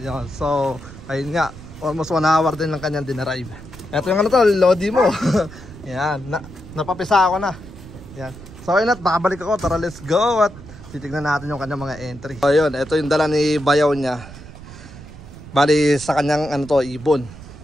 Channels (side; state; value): right; noise; rumble, 16 dB below the sound